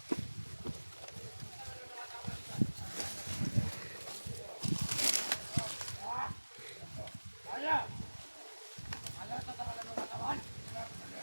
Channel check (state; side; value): inverted; both; correlation -1.00